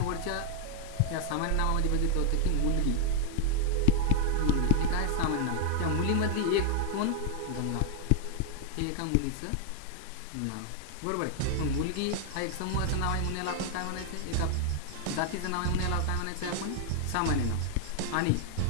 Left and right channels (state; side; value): different; both; correlation 0.00